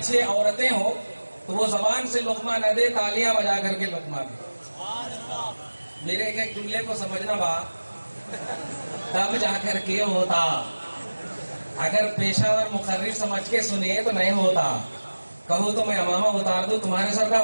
عورتیں ہوں تو وہ زبان سے لقمہ نہ دے، تالیاں بجا کر کے لقمہ دے. میرے ایک جملے کو سمجھنا با تب جا کر کے ہوتا. اگر پیشہ ور مقرر سمجھ کے سنیے تو نہیں ہوتا. کہو تو میں امامہ اتار دوں، تمہارے سر کا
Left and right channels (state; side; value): inverted; both; correlation -1.00